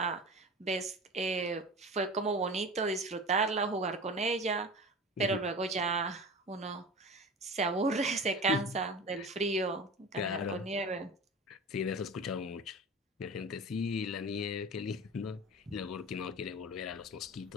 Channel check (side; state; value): both; normal; correlation 0.33